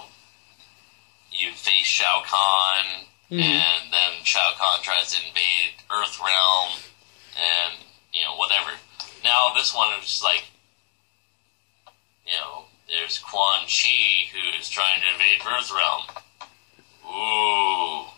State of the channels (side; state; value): right; silent; digital silence